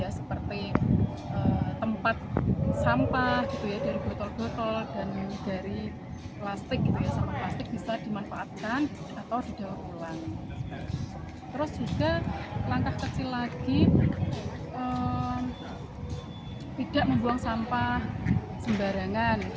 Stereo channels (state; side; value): identical; both; correlation 1.00